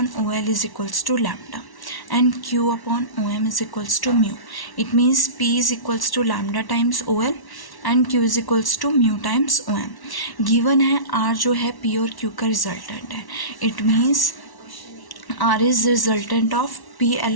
OL is equals to lambda and Q upon OM is equals to mu. It means P is equals to lambda times OL and Q is equals to mu times OM. Given है R जो है P और Q का resultant है. It means R is resultant of P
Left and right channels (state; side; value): late; right; 1.1 ms